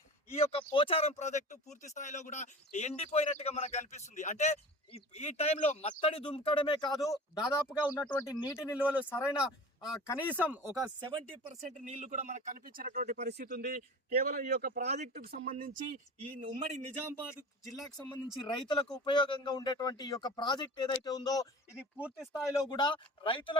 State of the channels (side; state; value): both; normal; correlation 0.37